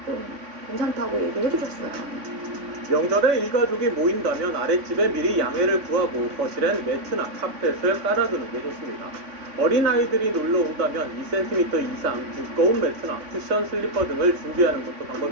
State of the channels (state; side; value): late; left; 3.5 ms